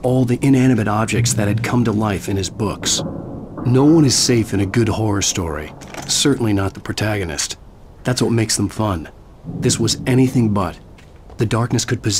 all the inanimate objects that had come to life in his books. No one is safe in a good horror story, certainly not the protagonist. That's what makes them fun. This was anything but. The darkness could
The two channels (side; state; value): both; identical; correlation 1.00